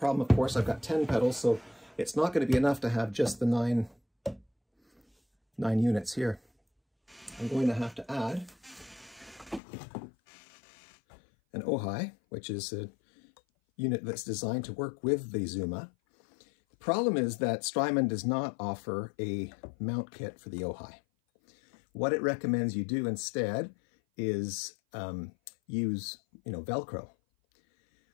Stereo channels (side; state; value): right; drops out; at 9.6 s